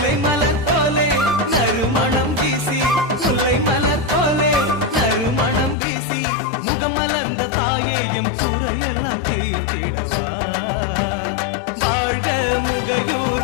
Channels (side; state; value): right; drops out; at 5.8 s